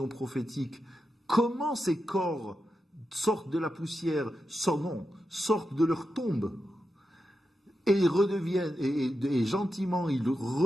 prophétique comment ces corps sortent de la poussière, sortent de leur tombe et redeviennent, et gentiment ils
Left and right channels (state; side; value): normal; both; correlation 0.88